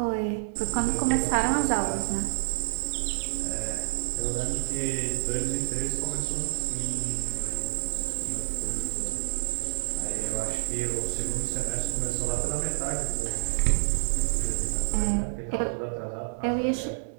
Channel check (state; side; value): silent; left; digital silence